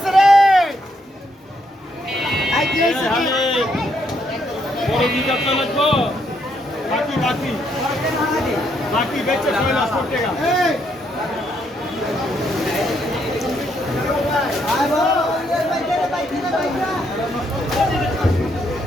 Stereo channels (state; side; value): normal; both; correlation 0.74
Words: বাকি বেচে 6,00,000 টাকা